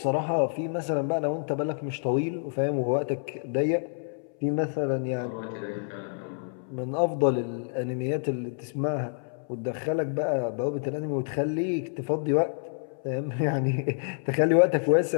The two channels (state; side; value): silent; right; 59 dB below the other